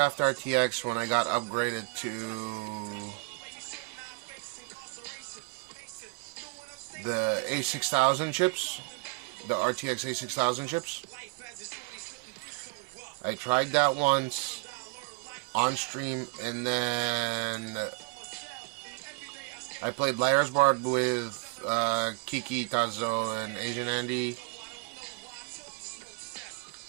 RTX when I got upgraded to the A6000 chips, the RTX A6000 chips. I tried that once on stream, and then I played Liar's Bar with Kiki, Tazo, and Asian Andy.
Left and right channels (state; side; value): quieter; left; 29.8 dB